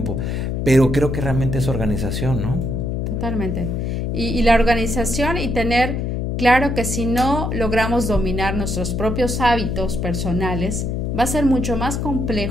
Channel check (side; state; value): left; noise; hum, 1 dB below the sound